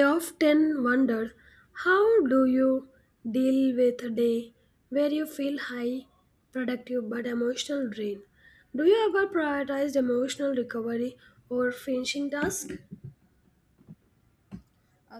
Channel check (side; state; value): both; identical; correlation 1.00